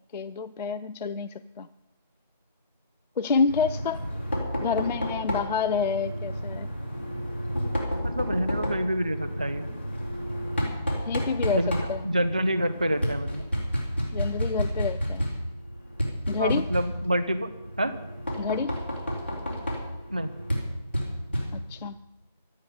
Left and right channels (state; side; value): inverted; both; correlation -0.65